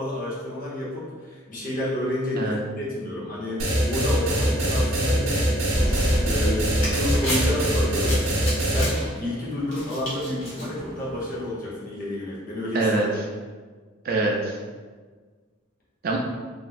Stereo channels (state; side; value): normal; both; correlation 0.59